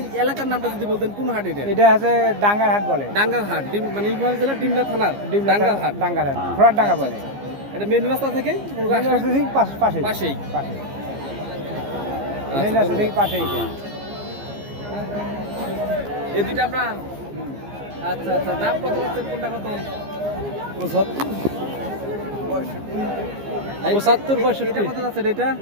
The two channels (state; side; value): late; left; 15 ms